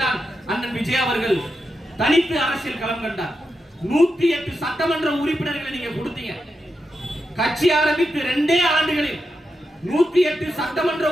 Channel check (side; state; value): both; normal; correlation 0.87